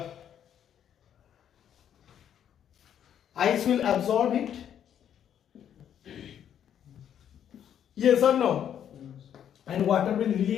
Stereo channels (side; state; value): right; quieter; 9.5 dB